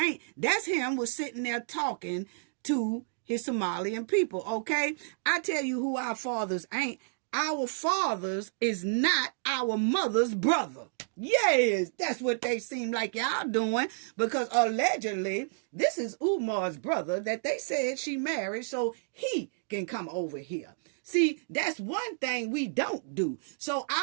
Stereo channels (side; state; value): left; silent; digital silence